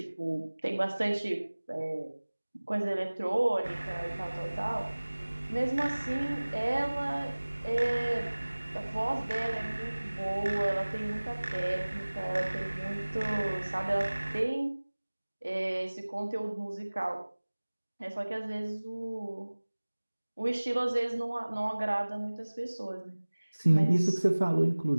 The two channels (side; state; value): both; inverted; correlation -1.00